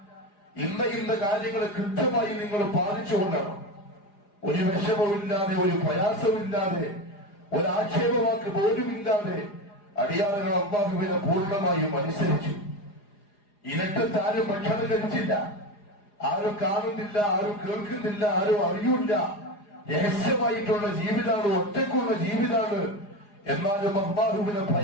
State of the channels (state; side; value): late; right; 4.9 ms